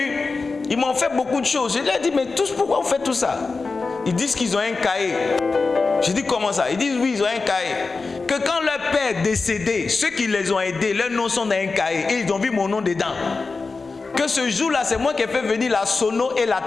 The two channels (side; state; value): right; quieter; 4.1 dB